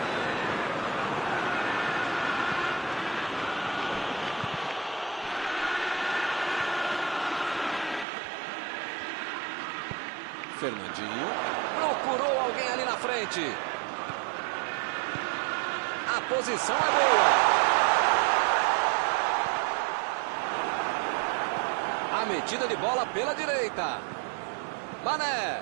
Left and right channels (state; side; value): drops out; left; at 8.1 s